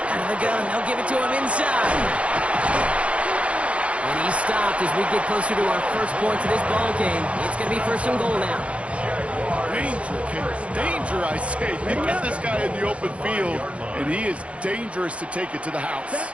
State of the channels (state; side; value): late; left; 0.062 ms